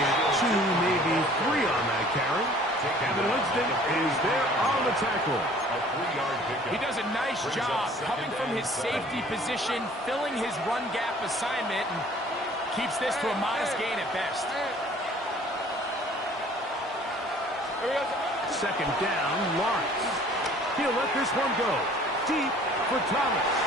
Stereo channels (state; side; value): normal; both; correlation 0.53